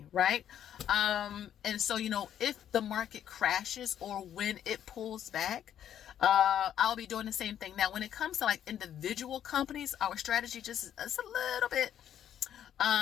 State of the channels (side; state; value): right; quieter; 10.2 dB